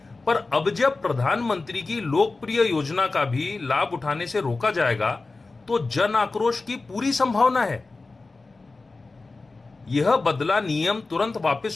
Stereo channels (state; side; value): quieter; right; 3.6 dB